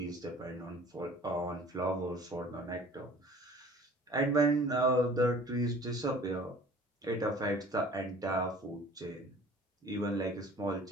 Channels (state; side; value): normal; both; correlation 0.48